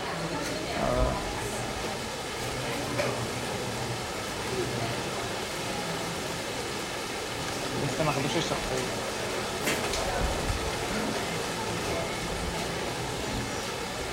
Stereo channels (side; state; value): both; identical; correlation 1.00